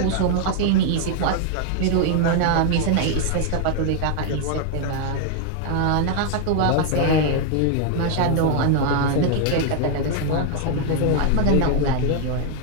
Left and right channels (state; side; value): different; both; correlation 0.00